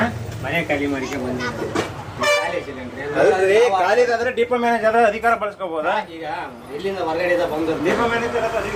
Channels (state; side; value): identical; both; correlation 1.00